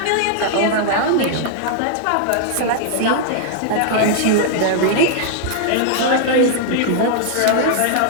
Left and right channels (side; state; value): both; different; correlation -0.01